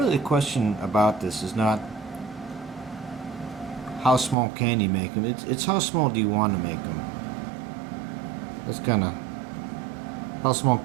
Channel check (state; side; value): drops out; left; at 4.4 s